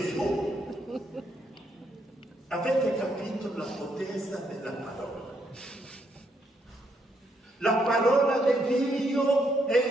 Avete capito la potenza della parola? La parola di Dio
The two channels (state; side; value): normal; both; correlation 0.75